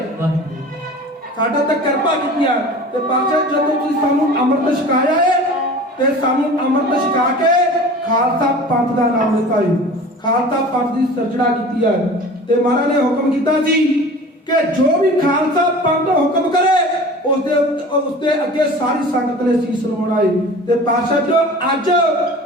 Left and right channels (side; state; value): both; normal; correlation 0.40